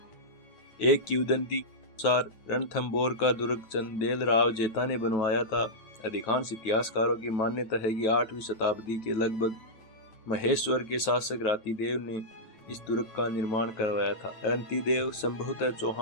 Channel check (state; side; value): late; right; 9.0 ms